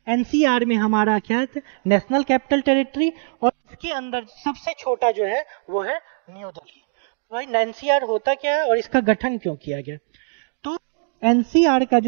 एनसीआर में हमारा क्या है, नेशनल कैपिटल टेरिटरी, और इसके अंदर सबसे छोटा जो है वो है न्यू दिल्ली। भाई एनसीआर होता क्या है और इसका गठन क्यों किया गया? तो एनसीआर का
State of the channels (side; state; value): left; silent; digital silence